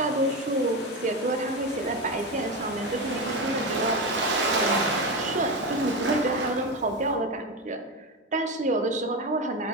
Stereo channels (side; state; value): both; normal; correlation 0.17